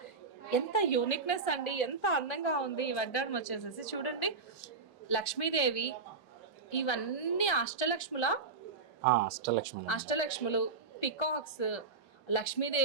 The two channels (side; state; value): left; quieter; 4.4 dB